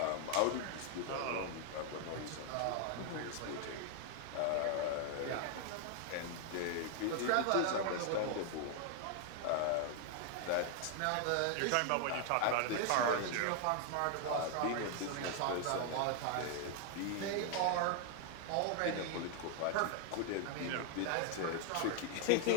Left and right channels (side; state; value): both; different; correlation 0.00